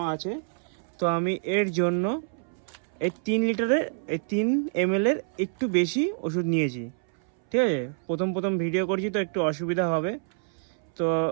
আছে। তো আমি এর জন্য এই 3 লিটারের, এই 3 ml এর একটু বেশি ওষুধ নিয়েছি। ঠিক আছে, প্রথম ভিডিও করছি তো একটু অসুবিধা হবে, তো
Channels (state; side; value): silent; left; 60 dB below the other